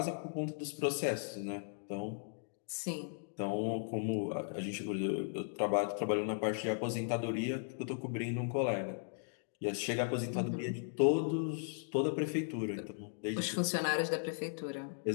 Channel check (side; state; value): right; silent; digital silence